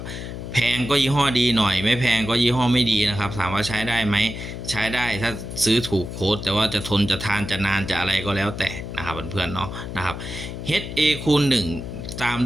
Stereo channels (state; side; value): noise; left; hum, 8 dB below the sound